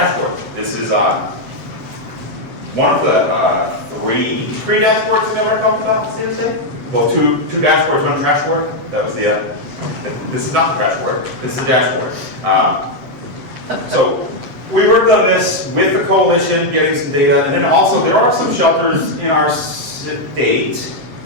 This is one of the three dashboards that I ever talked about seriously. Well, two dashboards, one trash board. That was the. This is not the trash board. This is the dashboard. So we worked on this with the coalition, getting some data, and then also there are some shelters in our state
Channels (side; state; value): left; late; 7.9 ms